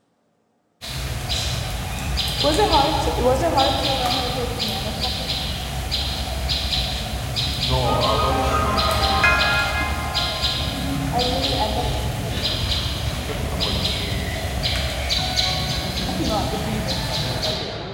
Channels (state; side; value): identical; both; correlation 1.00